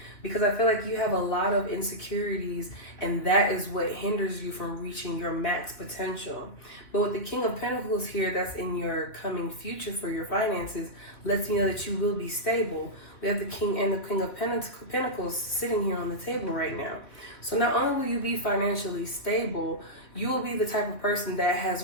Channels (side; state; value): right; late; 2.9 ms